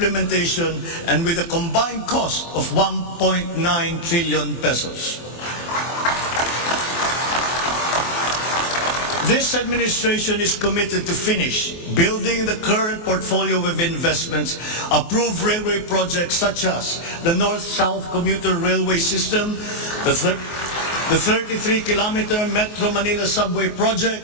and with a combined cost of 1.9 trillion pesos. This administration is committed to finish building the current portfolio of investments, approved railway projects such as the North-South Commuter Railway System, the 33-kilometer Metro Manila Subway Project,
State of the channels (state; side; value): late; right; 24 ms